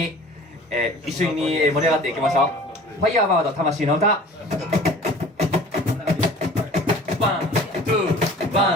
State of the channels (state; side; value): normal; both; correlation 0.45